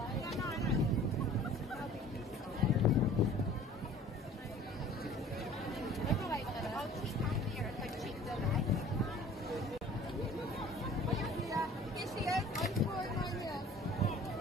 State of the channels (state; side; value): normal; both; correlation 0.48